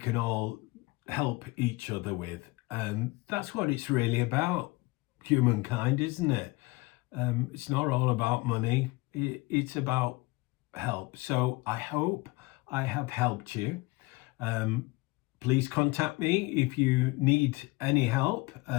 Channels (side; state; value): right; quieter; 22.9 dB